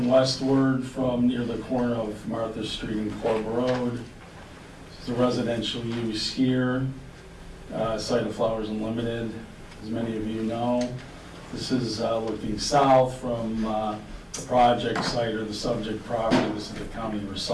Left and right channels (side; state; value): both; identical; correlation 1.00